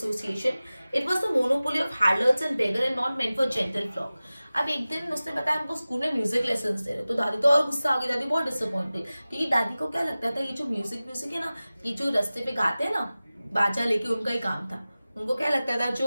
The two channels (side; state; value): both; inverted; correlation -0.97